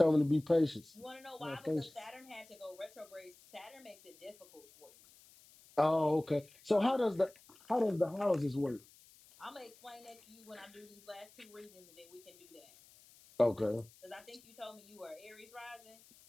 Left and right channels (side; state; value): left; noise; hiss, 25 dB below the sound